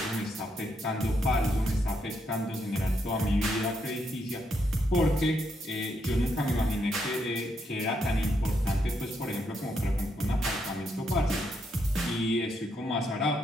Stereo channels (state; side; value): normal; both; correlation 0.78